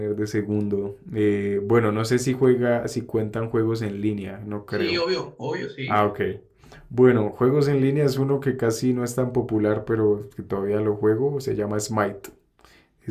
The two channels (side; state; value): both; identical; correlation 1.00